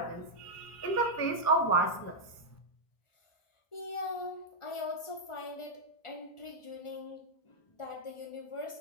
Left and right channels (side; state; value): right; late; 1.4 ms